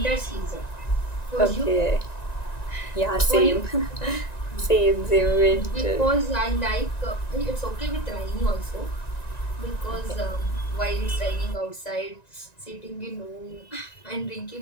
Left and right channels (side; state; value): right; late; 1.9 ms